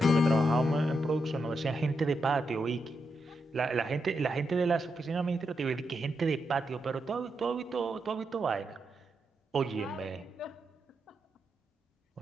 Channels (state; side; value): normal; both; correlation 0.84